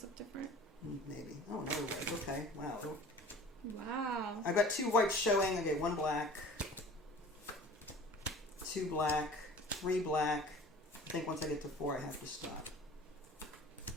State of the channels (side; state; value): both; normal; correlation 0.44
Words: look different. Maybe. Oh no. Okay. Wow. Wow. I've got 2 whites showing. Okay, 1 black, 2 black, 3 black. I think once I get to 4, I have to stop.